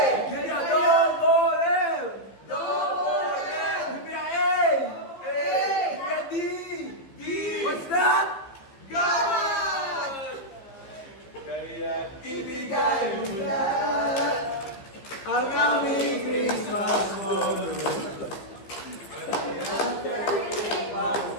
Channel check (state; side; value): late; right; 15 ms